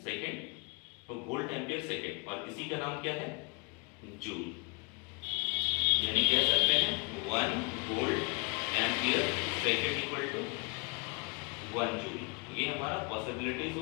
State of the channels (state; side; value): quieter; right; 33.2 dB